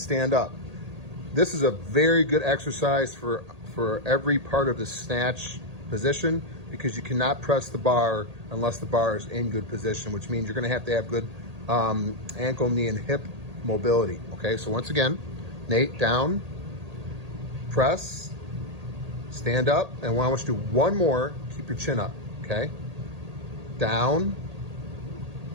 up. This is a very good exercise for every part of the snatch position because you cannot press the bar unless the bar is in good position, which means you're going to have good ankle, knee, and hip mobility. Okay, so once again, Nate, down, press, stand up, and I want you to do one more. Keep your chin up, okay? Down,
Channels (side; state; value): left; late; 1.8 ms